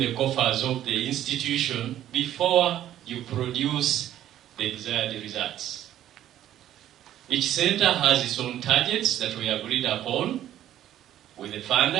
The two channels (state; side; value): quieter; left; 12.0 dB